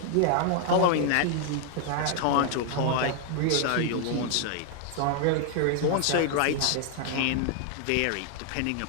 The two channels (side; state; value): both; different; correlation 0.00